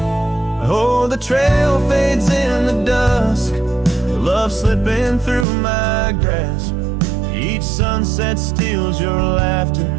Oh, the trail fades in the dusk, love slipping through my grasp. Each sunset steals your laughter,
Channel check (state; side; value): drops out; left; at 5.5 s